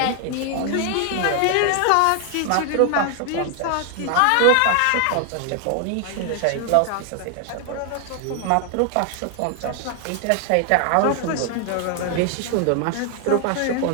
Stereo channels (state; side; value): different; both; correlation 0.00